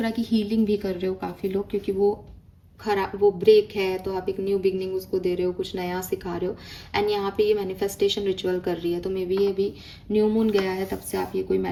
की हीलिंग भी कर रहे हो काफ़ी लोग, क्योंकि वो ब्रेक है, तो आप एक न्यू बिगनिंग उसको दे रहे हो, कुछ नया सिखा रहे हो। एंड यहाँ पे ये मैनिफेस्टेशन रिचुअल कर रही है, तो मे बी ये भी न्यू मून गया है, तब से आप ये कोई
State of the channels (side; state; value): both; identical; correlation 1.00